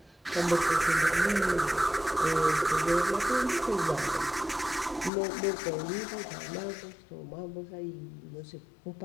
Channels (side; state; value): right; drops out; at 5.1 s